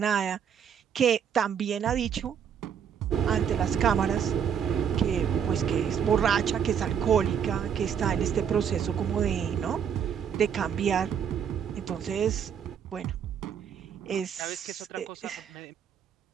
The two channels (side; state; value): left; quieter; 8.0 dB